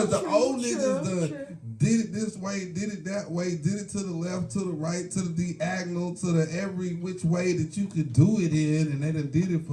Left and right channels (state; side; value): identical; both; correlation 1.00